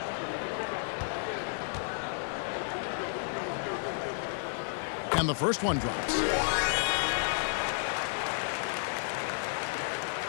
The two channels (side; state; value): right; silent; digital silence